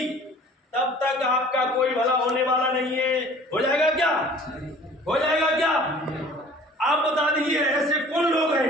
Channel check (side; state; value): both; normal; correlation 0.49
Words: तब तक आपका कोई भला होने वाला नहीं है। हो जाएगा क्या? हो जाएगा क्या? आप बता दीजिए ऐसे कौन लोग